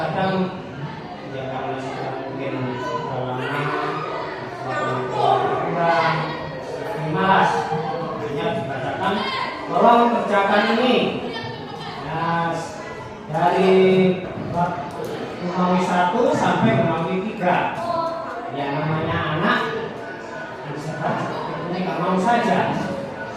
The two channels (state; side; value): identical; both; correlation 1.00